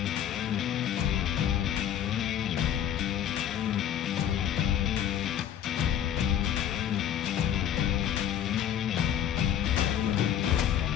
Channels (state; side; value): quieter; right; 10.1 dB